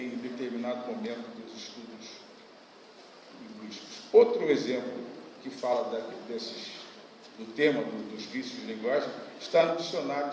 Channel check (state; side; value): identical; both; correlation 1.00